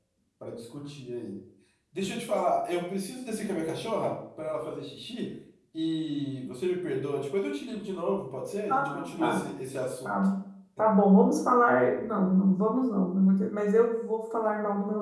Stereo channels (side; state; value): both; identical; correlation 1.00